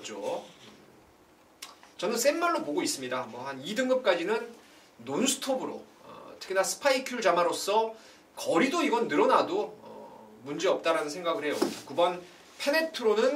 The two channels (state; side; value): identical; both; correlation 1.00